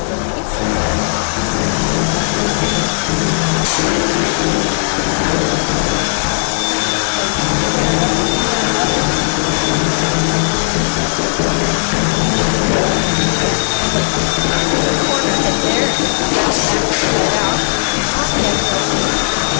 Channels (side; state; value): right; silent; 64 dB below the other